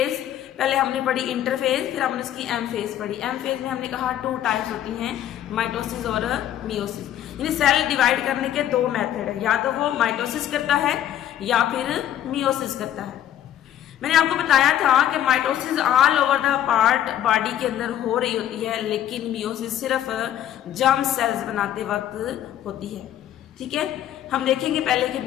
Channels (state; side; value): quieter; right; 11.4 dB